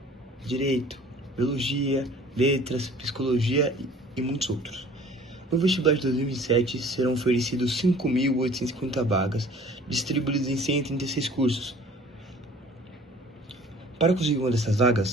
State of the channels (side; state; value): both; normal; correlation 0.49